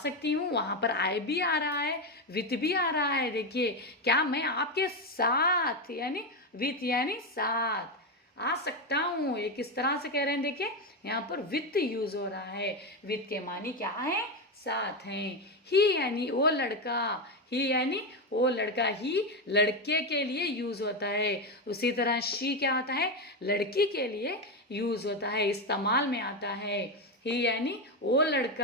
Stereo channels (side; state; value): both; normal; correlation 0.11